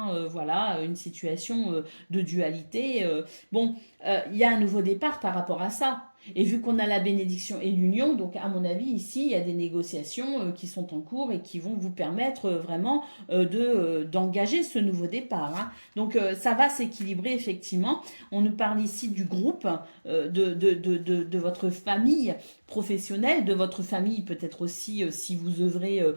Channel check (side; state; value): both; inverted; correlation -1.00